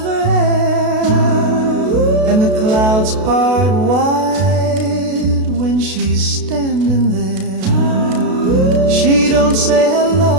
hair, and the clouds part wide when she's standing there. She don't say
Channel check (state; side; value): late; left; 32 ms